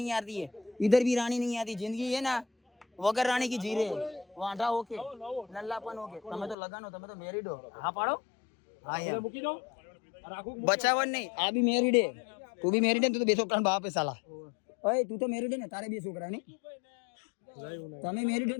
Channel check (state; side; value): drops out; right; at 6.6 s